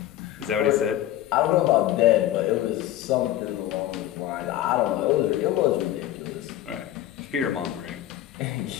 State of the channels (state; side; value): quieter; right; 13.1 dB